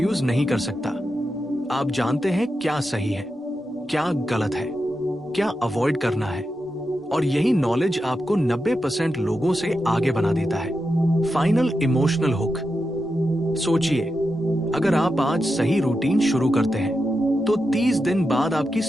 नहीं कर सकता। आप जानते हैं क्या सही है, क्या गलत है, क्या अवॉइड करना है, और यही नॉलेज आपको 90% लोगों से आगे बना देता है। Final emotional hook. सोचिए, अगर आप आज सही रूटीन शुरू करते हैं तो 30 दिन बाद आपकी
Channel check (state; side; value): normal; both; correlation 0.88